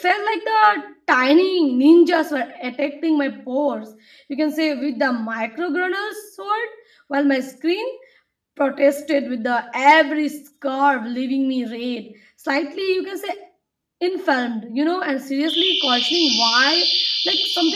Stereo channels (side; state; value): both; identical; correlation 1.00